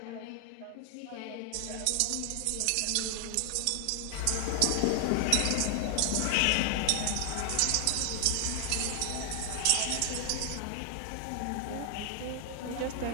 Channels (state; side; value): different; both; correlation 0.00